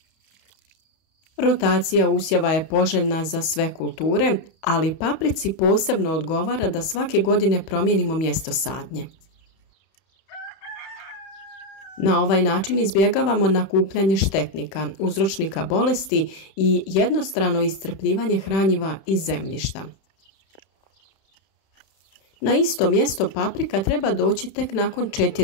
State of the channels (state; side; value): late; right; 31 ms